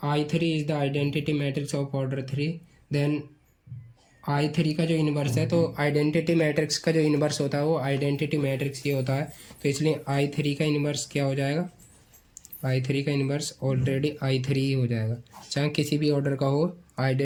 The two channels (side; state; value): both; identical; correlation 1.00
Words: I3 is the identity matrix of order 3 then I3 का जो इनवर्स है, तो आइडेंटिटी मैट्रिक्स का जो इनवर्स होता है वो आइडेंटिटी मैट्रिक्स ही होता है, तो इसलिए I3 का इनवर्स क्या हो जाएगा, I3 का इनवर्स ऑलरेडी I3 ही हो जाएगा, चाहे किसी भी ऑर्डर का हो।